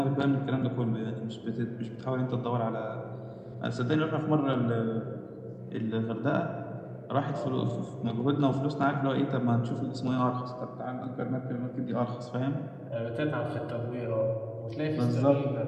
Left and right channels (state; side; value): identical; both; correlation 1.00